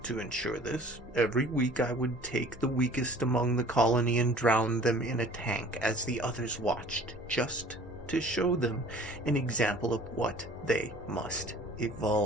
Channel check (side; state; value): both; normal; correlation 0.49